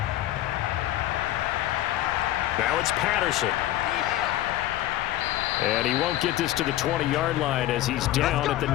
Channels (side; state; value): right; quieter; 14.2 dB